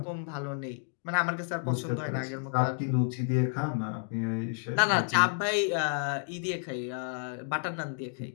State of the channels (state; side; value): silent; right; digital silence